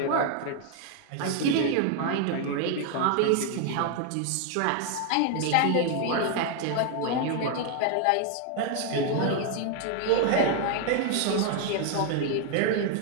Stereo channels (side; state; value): both; different; correlation 0.00